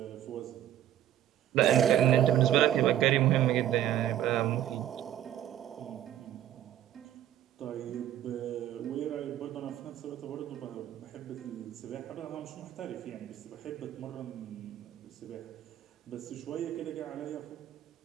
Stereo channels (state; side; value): quieter; left; 11.6 dB